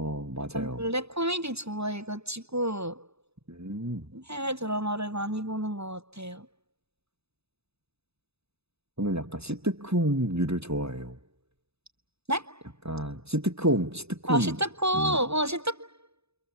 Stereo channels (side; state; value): left; late; 0.79 ms